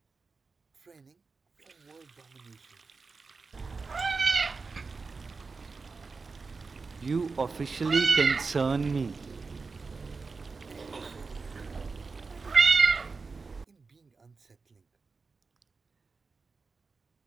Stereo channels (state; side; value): quieter; left; 4.4 dB